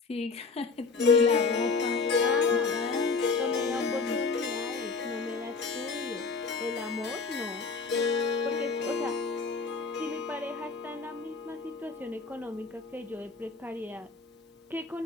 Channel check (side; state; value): right; quieter; 4.5 dB